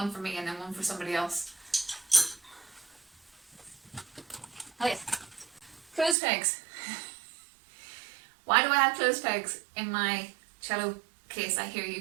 for me and then one for somebody else. Oh yes. Clothes pegs. Why do I have clothes pegs in my cello case? I hear you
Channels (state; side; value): drops out; left; at 6.2 s